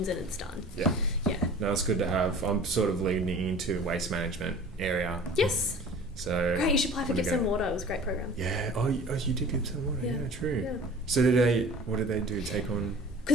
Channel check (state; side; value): normal; both; correlation 0.43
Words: and it's done. Yeah. No, it's good to have. I'm sort of leaning into waste management area. Yes. So great. You should apply for Gippsland Water. It was a great program. Yeah. Oh, you did Gippsland Water. Yeah, true. Yeah. So what did they do? Take on.